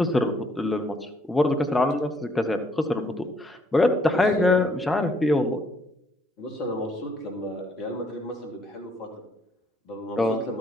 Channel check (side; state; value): both; normal; correlation 0.68